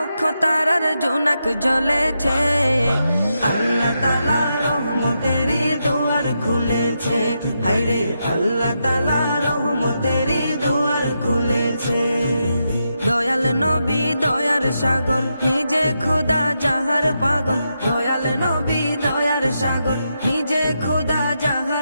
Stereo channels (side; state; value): both; inverted; correlation -0.84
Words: তারার জোনাক জ্বলেছে। আল্লাহ তাআলা রহমতেরই দুয়ার খুলেছে, হায়রে আল্লাহ তাআলা রহমতেরই দুয়ার খুলেছে। দয়াল নবী দয়ার সাগর, নিজে খোদা যাহার পাগল। দয়াল নবী দয়ার সাগর, নিজে খোদা